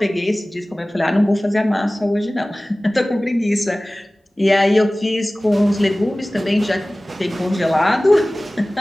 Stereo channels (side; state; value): both; normal; correlation 0.98